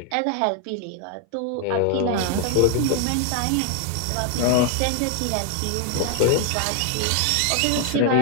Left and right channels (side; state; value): both; different; correlation 0.00